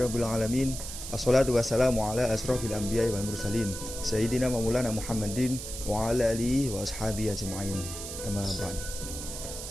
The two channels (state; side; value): noise; right; hiss, 8 dB below the sound